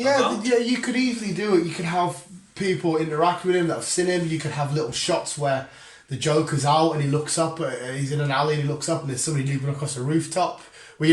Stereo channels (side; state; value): both; identical; correlation 1.00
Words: Yeah, you could easily do it. You could have people interact with him that have seen him. You could have little shots where the Joker's out and he looks up, he's in an alley and he looks up and there's somebody leaping across a rooftop, where